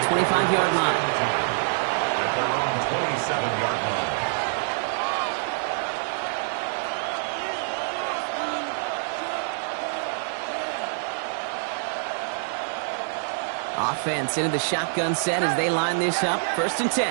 25-yard line. At their own 27-yard line. Offense into the shotgun set as they line this up. 1st and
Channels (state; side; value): silent; left; digital silence